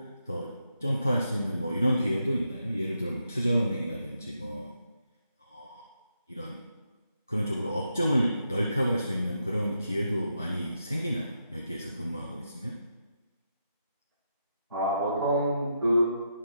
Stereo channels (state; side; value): inverted; both; correlation -0.83